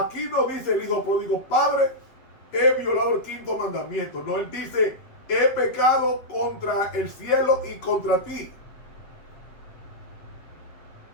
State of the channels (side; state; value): right; late; 8.0 ms